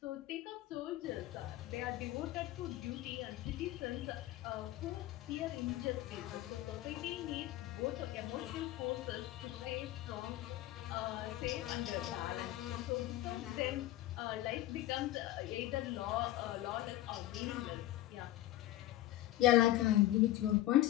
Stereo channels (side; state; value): right; quieter; 15.1 dB